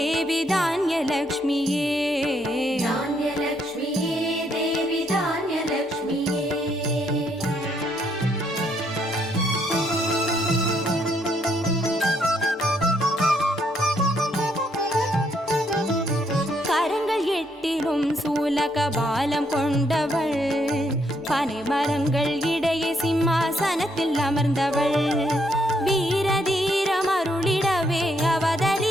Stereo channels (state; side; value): normal; both; correlation 0.73